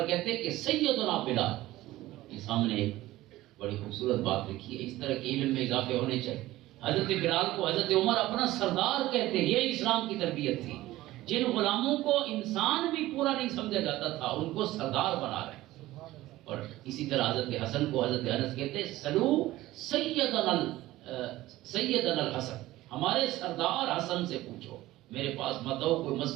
کہتے کہ سیدنا بلال۔ یہ سامنے ایک بڑی خوبصورت بات لکھی ہے، اس طرح کے علم میں اضافے ہونے چاہیے۔ حضرت بلال کو حضرت عمر اپنا سردار کہتے ہیں، یہ اسلام کی تربیت تھی۔ جن غلاموں کو انسان بھی پورا نہیں سمجھا جاتا تھا ان کو سردار بنا رہے ہیں۔ اور اسی طرح حضرت حسن کو حضرت انس کہتے ہیں سلو سیدنا الحسن، ہمارے سردار حسن سے پوچھو، میرے پاس مت آؤ، کوئی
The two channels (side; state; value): left; quieter; 16.7 dB